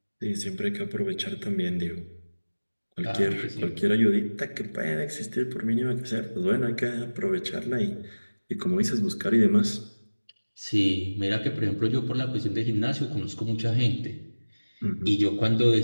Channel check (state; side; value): inverted; both; correlation -1.00